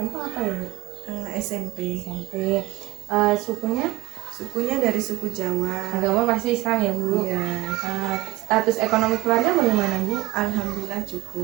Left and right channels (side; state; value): left; quieter; 18.2 dB